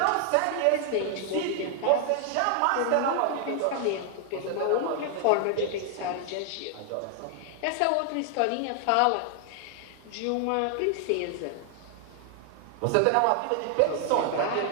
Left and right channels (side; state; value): both; different; correlation 0.00